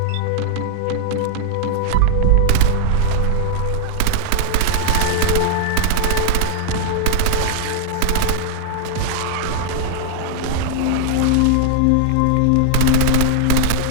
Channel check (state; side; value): different; both; correlation 0.00